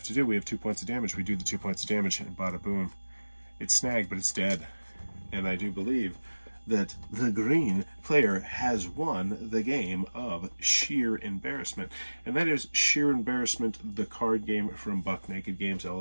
to do, we have 2 points of damage. We do the 2 points of damage, and bada boom, it's snagged, but it's dead. And I do believe that the green player has won the game of Shear Embarrassment. And that is Shear Embarrassment, the card game from Buck Naked Games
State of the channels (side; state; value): both; inverted; correlation -1.00